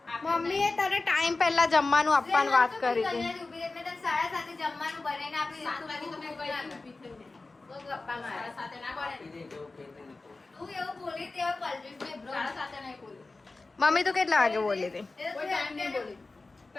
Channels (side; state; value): right; quieter; 3.5 dB